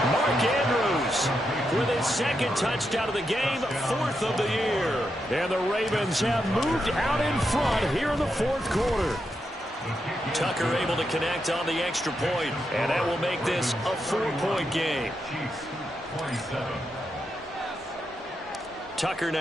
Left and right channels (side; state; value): both; normal; correlation 0.84